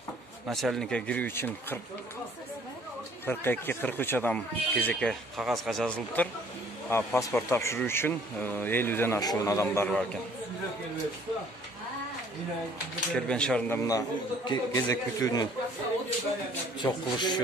начальникке кирүү үчүн 42-43 адам кезекке кагазга жазылыптыр. Паспорт тапшыруу үчүн 50ден ашуун адамдар бар экен. Кербен шаарында мына кезек күтүүнү чок кылыш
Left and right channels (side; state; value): both; normal; correlation 0.57